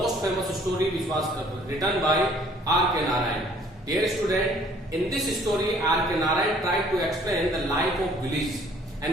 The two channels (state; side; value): normal; both; correlation 0.58